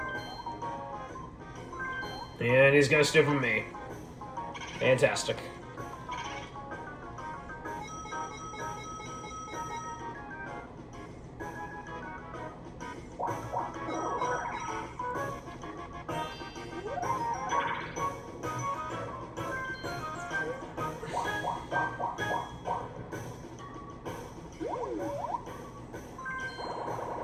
And he's gonna steal from me. Fantastic.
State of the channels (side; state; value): both; identical; correlation 1.00